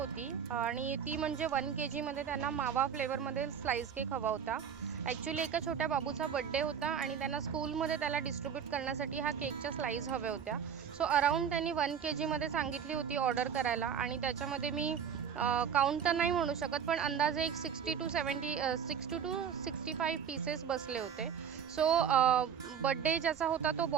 आणि ती म्हणजे 1 kgमध्ये त्यांना मावा फ्लेवरमध्ये स्लाईस केक हवा होता. ॲक्च्युली एका छोट्या बाबूचा बड्डे होता आणि त्यांना स्कूलमध्ये त्याला डिस्ट्रीब्यूट करण्यासाठी ह्या केकच्या स्लाईस हव्या होत्या. सो अराऊंड त्यांनी 1 kgमध्ये सांगितली होती ऑर्डर करायला आणि त्याच्यामध्ये मी काउंट तर नाही म्हणू शकत, पण अंदाजे एक 60 टू 65 पीसेस बसले होते. सो बड्डे ज्याचा होता तो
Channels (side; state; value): left; quieter; 7.8 dB